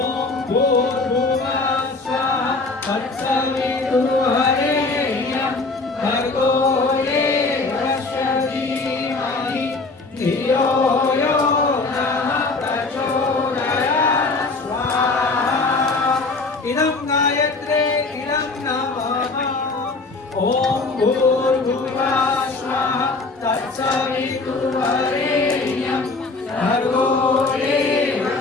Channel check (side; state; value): right; quieter; 3.6 dB